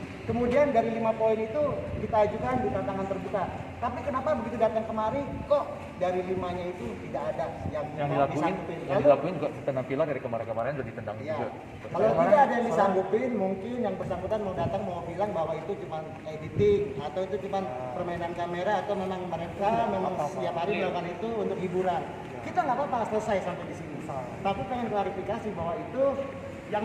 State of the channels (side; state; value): both; identical; correlation 1.00